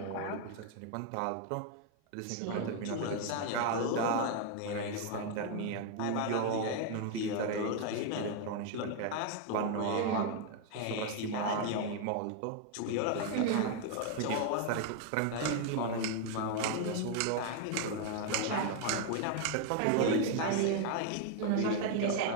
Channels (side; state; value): both; different; correlation 0.00